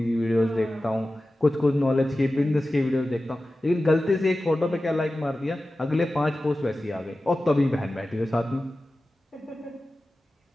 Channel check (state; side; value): normal; both; correlation 0.95